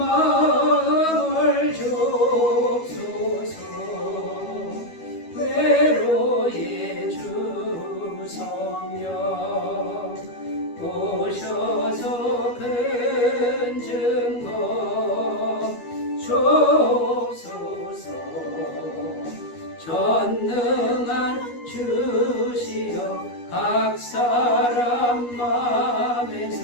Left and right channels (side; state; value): right; late; 12 ms